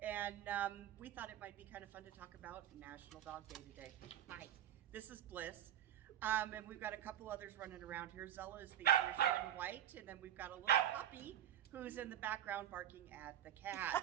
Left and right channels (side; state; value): left; quieter; 11.3 dB